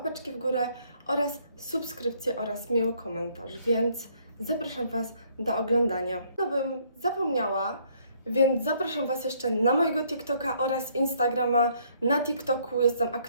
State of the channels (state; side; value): inverted; both; correlation -0.66